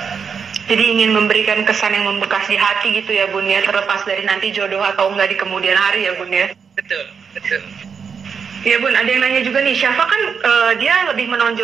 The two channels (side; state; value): left; quieter; 6.3 dB